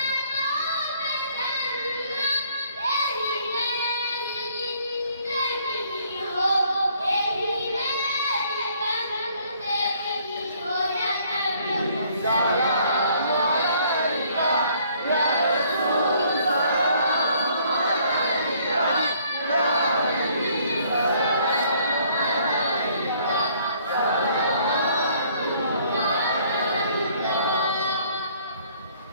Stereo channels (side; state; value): both; inverted; correlation -0.62